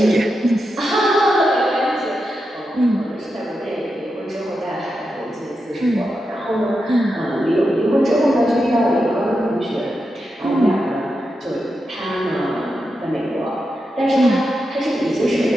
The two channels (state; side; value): normal; both; correlation 0.88